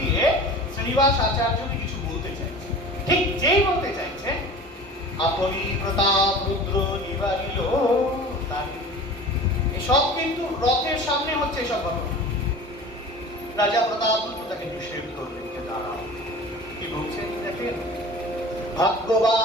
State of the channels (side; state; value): both; normal; correlation 0.38